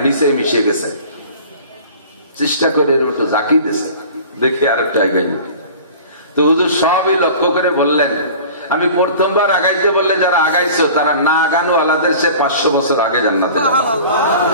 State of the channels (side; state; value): both; inverted; correlation -0.42